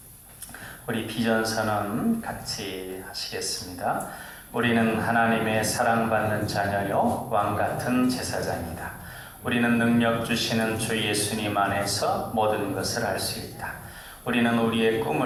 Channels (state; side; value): identical; both; correlation 1.00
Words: 우리 비전선언 같이 하시겠습니다. 우리는 하나님의 사랑받는 자녀요 왕같은 제사장이다. 우리는 능력 주시는 주 예수님 안에서 모든 것을 알 수 있다. 우리는 우리의